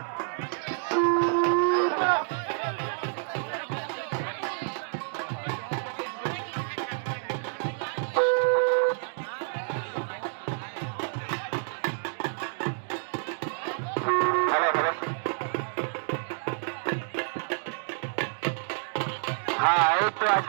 হ্যাঁ এই তো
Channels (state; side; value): silent; left; 59 dB below the other